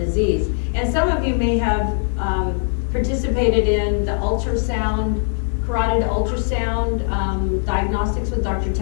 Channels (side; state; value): right; silent; 66 dB below the other